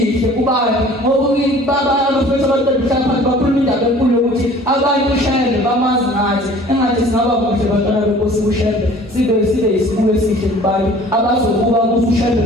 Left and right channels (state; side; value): normal; both; correlation 0.49